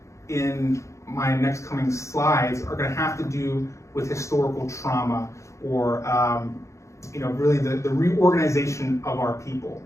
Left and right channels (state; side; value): late; right; 0.14 ms